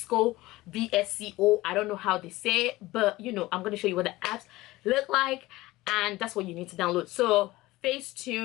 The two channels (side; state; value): right; quieter; 18.8 dB